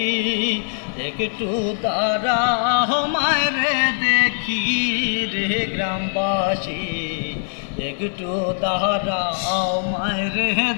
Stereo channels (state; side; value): silent; right; 65 dB below the other